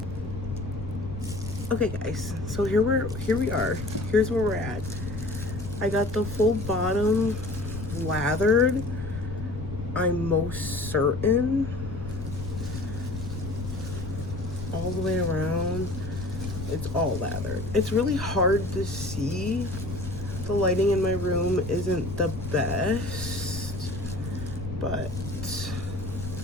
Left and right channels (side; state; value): left; noise; rumble, 8 dB below the sound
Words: Okay guys, so here we are. Here's where we're at. I got the full bottom lathered. I'm most certain. All the way around, it's all lathered. It's really hard to see. The lighting in my room isn't the best, but